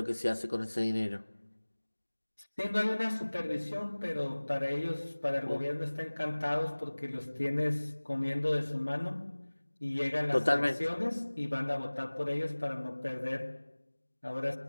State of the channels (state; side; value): inverted; both; correlation -1.00